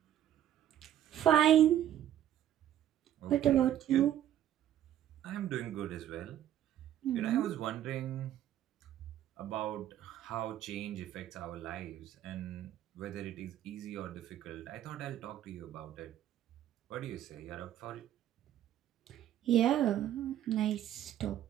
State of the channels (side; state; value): left; quieter; 11.5 dB